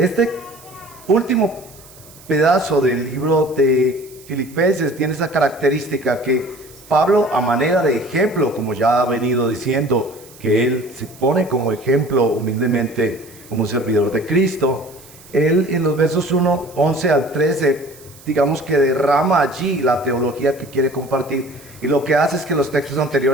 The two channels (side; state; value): right; noise; hiss, 22 dB below the sound